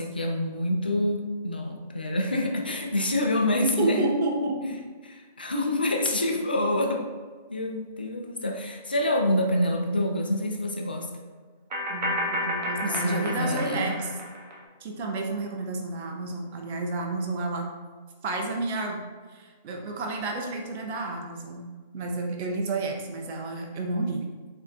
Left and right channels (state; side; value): inverted; both; correlation -0.58